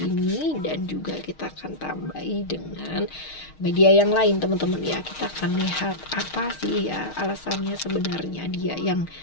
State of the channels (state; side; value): late; right; 6.4 ms